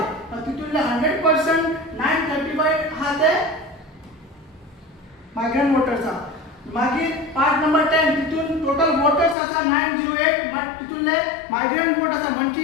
आणि तितूनले 100% 935 आहा ते मायग्रंट वोटर्स आहा. मागीर पार्ट नंबर 10 तितून टोटल वोटर्स आसा 908 बट तितूनले मायग्रंट वोट आसा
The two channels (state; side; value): drops out; right; at 9.3 s